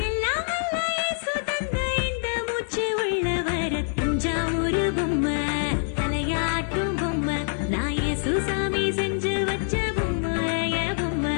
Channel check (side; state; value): right; silent; digital silence